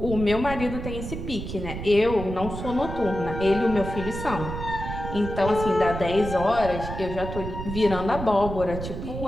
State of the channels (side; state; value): right; noise; rumble, 7 dB below the sound